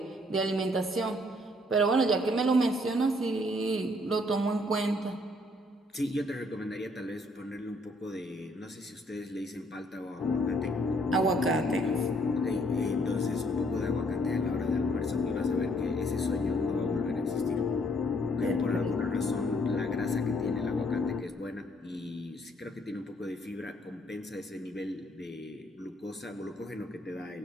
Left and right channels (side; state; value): both; normal; correlation 0.66